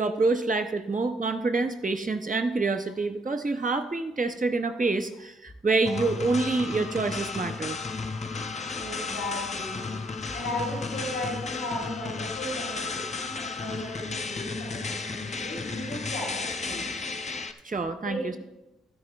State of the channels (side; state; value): both; normal; correlation 0.68